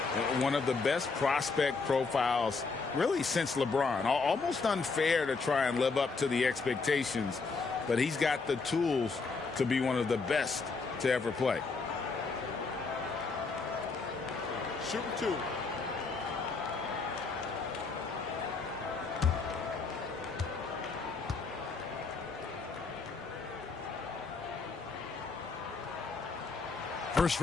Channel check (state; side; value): quieter; right; 4.4 dB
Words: One of the best prospect profiles really since LeBron. Almost unfair to try and live up to the expectations, but he's got the tools to be one of the best to ever play. Shooting 2. First